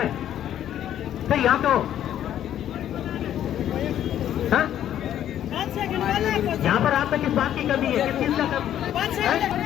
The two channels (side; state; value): right; quieter; 11.0 dB